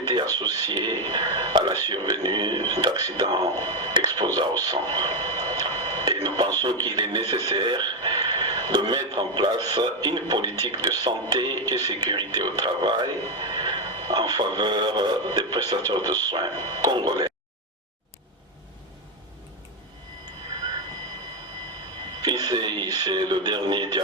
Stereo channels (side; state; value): both; normal; correlation 0.06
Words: associés à la survenue d'accidents exposants au sang. Et nous pensons qu'il est nécessaire de mettre en place une politique de santé et sécurité au travail en faveur des prestataires de soins congolais. Ici, c'est le dernier